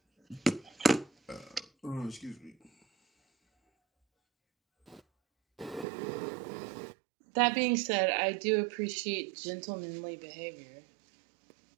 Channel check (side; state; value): left; drops out; at 5.9 s